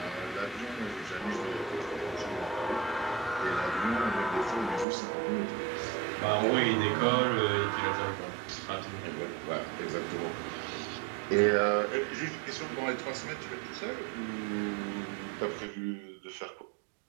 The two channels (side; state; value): left; drops out; at 4.9 s